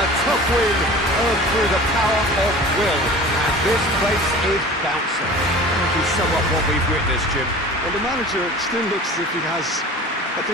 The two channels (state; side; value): normal; both; correlation 0.40